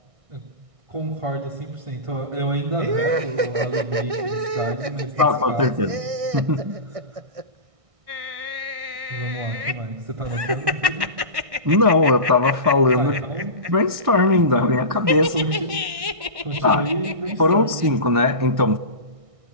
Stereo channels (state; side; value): late; left; 1.6 ms